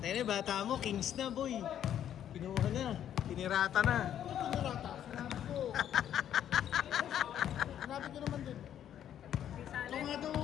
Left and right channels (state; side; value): quieter; right; 10.3 dB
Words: Tayo na, bata mo, Kings na boy. Pinuha na, tinirata na. Pinirata, sinabi ko. Sinabi ko naman din. Kung nga daw